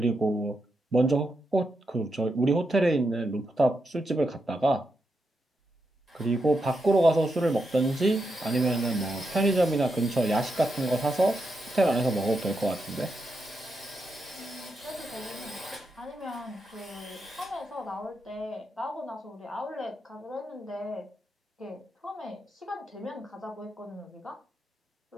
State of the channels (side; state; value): both; normal; correlation 0.85